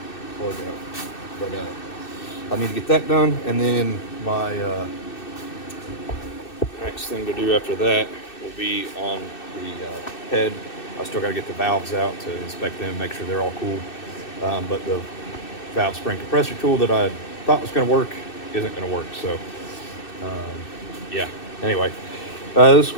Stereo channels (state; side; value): late; right; 2.6 ms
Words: plug out, but I need to get that done, and then my next thing to do after that will be on the head. I still got to get the valves out to inspect them, make sure they're all cool. But the valve spring compressor tool that I thought was going to work isn't going to work. So, yeah. Anyway, this is